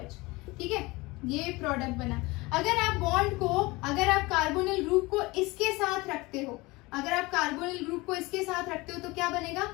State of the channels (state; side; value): quieter; right; 22.7 dB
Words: ठीक है, ये प्रोडक्ट बना। अगर आप बॉन्ड को, अगर आप कार्बोनिल ग्रुप को इसके साथ रखते हो, अगर आप कार्बोनिल ग्रुप को इसके साथ रखते हो तो क्या बनेगा,